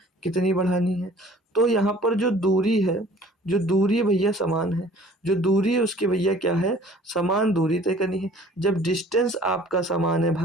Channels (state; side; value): normal; both; correlation 0.51